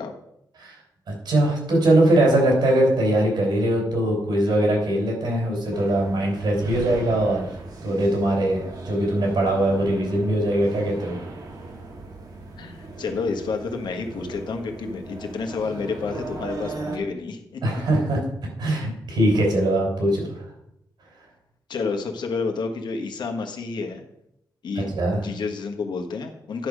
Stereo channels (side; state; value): both; normal; correlation 0.77